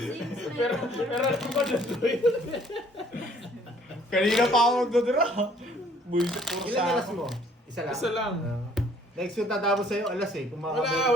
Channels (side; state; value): both; normal; correlation 0.59